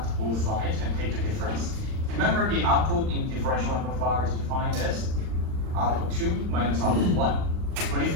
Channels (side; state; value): left; late; 39 ms